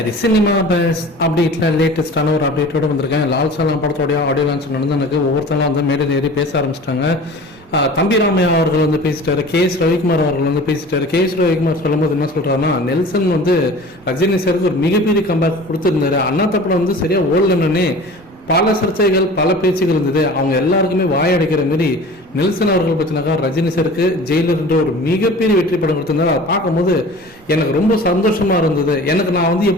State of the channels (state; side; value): noise; right; rumble, 26 dB below the sound